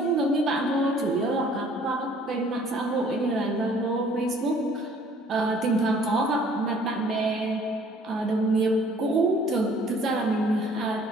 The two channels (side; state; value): both; normal; correlation 0.56